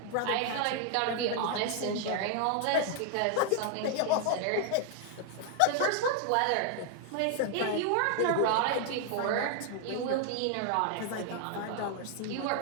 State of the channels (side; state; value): both; different; correlation 0.00